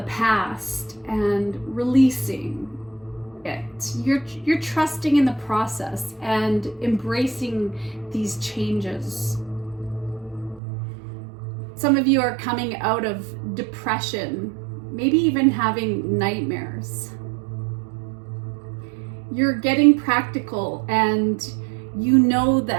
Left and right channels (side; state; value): left; drops out; at 10.6 s